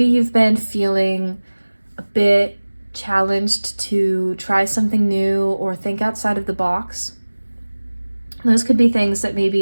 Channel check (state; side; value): inverted; both; correlation -1.00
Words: you've been feeling a bit challenged to try something new or think outside of the box. Those could be things that